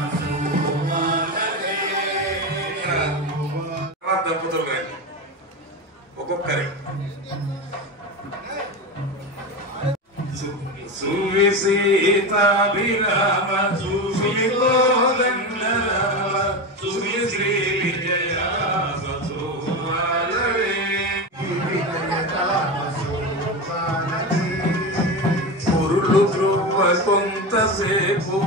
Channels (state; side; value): normal; both; correlation 0.20